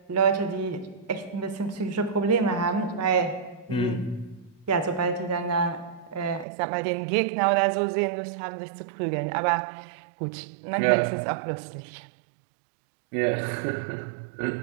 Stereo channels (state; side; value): drops out; left; at 6.5 s